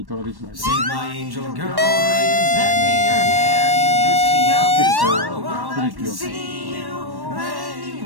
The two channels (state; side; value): late; left; 1.1 ms